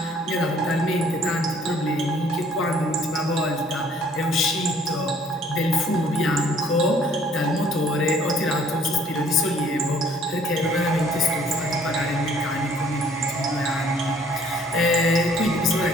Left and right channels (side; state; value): both; normal; correlation 0.58